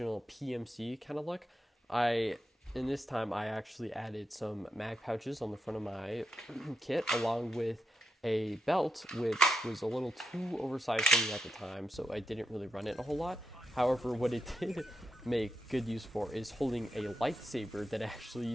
PMC kind of look, in this time I actually added some mag pouches on the front of my kit, along with a belt, which was a little too oversized for me at the time, so I didn't really run it a whole lot. However, what it did make good use for is holding a lightsaber that I actually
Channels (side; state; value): both; normal; correlation 0.86